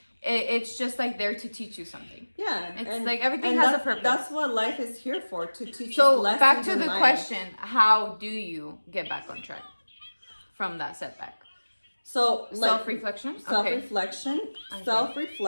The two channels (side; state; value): both; inverted; correlation -1.00